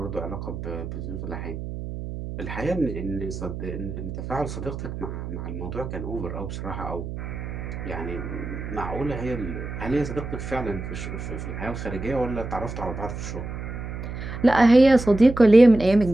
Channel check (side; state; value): right; noise; hum, 7 dB below the sound